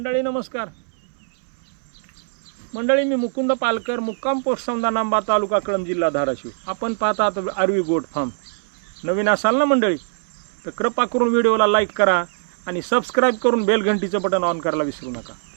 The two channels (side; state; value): left; silent; 64 dB below the other